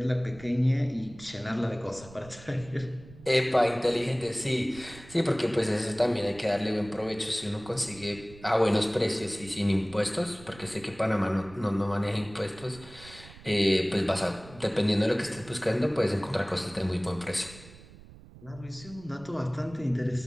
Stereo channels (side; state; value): right; noise; rumble, 19 dB below the sound